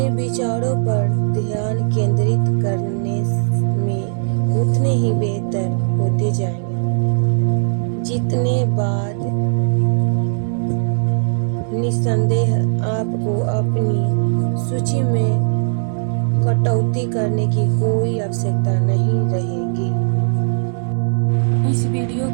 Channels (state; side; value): silent; left; digital silence